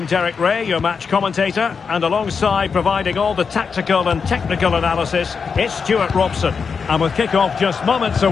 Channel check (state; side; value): quieter; right; 5.7 dB